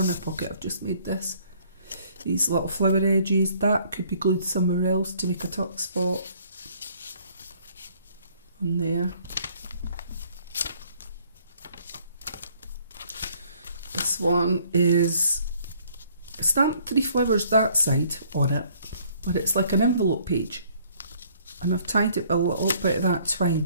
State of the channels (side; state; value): both; inverted; correlation -0.61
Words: pocket. I've just made this. These little flower edges, that could be glued somewhere else to make a tuck spot on there. This one is stamped 3 flowers that side on it, but it's like an envelope page, and I've tied it with a little bit of that